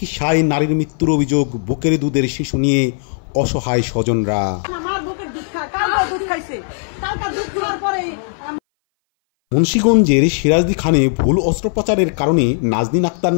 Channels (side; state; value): right; silent; 60 dB below the other